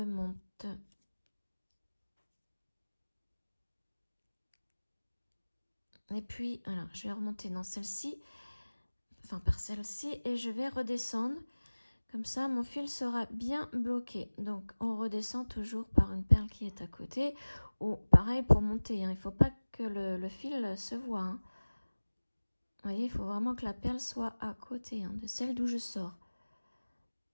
Et puis, alors, je vais remonter dans celle-ci, enfin par celle-ci, et je vais redescendre. Comme ça, mon fil sera bien bloqué. Donc, on redescend toujours par une perle qui est à côté. Ou pareil pour monter. Il ne faut pas que le fil se voit. Vous voyez, il faut vraiment que la perle soit à côté de celle d'où je sors.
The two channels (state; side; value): inverted; both; correlation -1.00